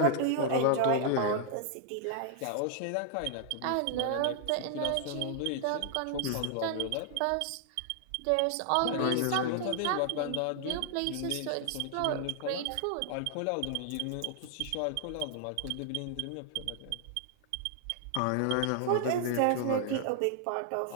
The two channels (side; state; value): both; different; correlation 0.00